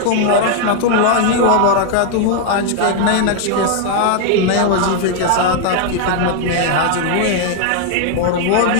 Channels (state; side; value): different; both; correlation 0.00